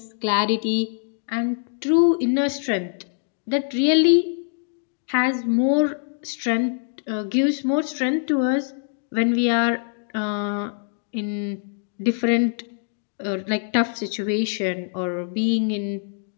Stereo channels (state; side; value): silent; right; digital silence